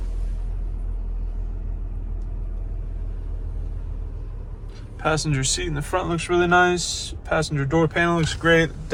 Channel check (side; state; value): both; identical; correlation 1.00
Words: passenger seat in the front looks really nice. Passenger door panel looks great.